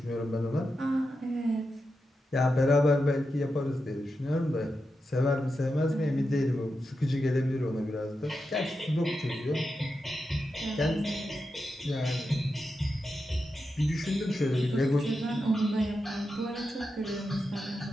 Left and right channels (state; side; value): normal; both; correlation 0.88